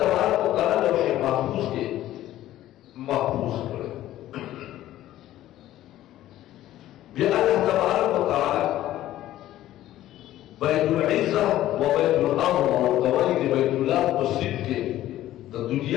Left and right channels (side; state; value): right; quieter; 13.9 dB